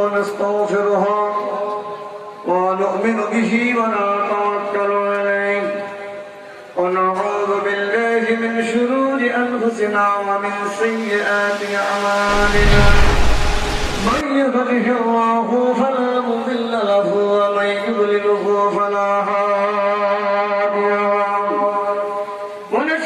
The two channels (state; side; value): identical; both; correlation 1.00